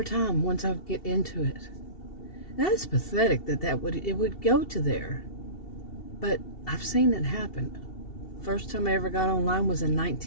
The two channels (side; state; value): right; late; 2.7 ms